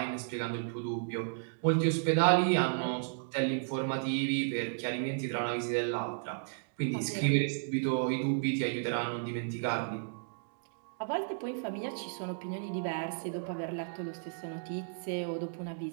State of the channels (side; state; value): left; silent; digital silence